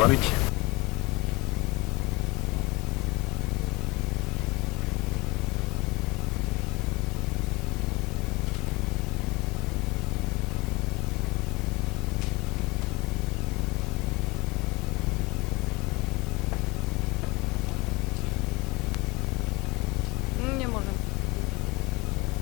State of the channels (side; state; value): right; quieter; 24.7 dB